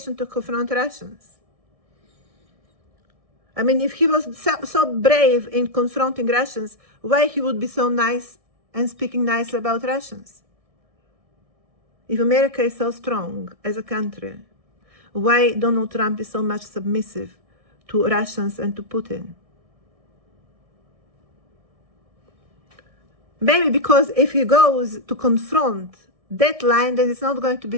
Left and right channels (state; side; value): late; left; 1.6 ms